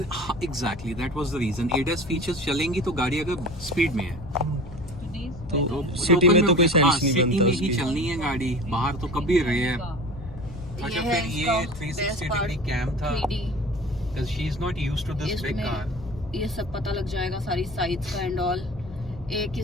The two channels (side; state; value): left; noise; hum, 15 dB below the sound